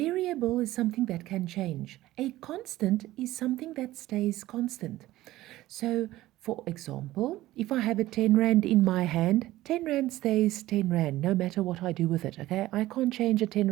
is something that can change. A constant is something that stays constant. So, for example, if I have a 10 Rand in my hand, 10 Rand stays 10 Rand no matter what I do with it, okay? I can't change a 10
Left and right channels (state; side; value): quieter; left; 16.2 dB